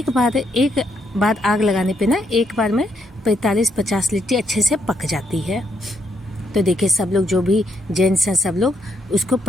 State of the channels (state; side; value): normal; both; correlation 0.76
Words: बार आग लगाने पे ना एक बार में 45-50 लिट्टी अच्छे से पक जाती है। तो देखिए सब लोग जो भी जेंट्स हैं सब लोग उसको